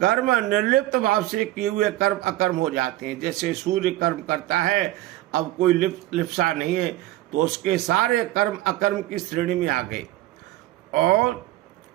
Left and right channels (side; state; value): left; quieter; 16.1 dB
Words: निर्लिप्त भाव से किए हुए कर्म अकर्म हो जाते हैं। जैसे सूर्य कर्म करता है, अब कोई लिप्सा नहीं है, तो उसके सारे कर्म अकर्म की श्रेणी में आ गए। और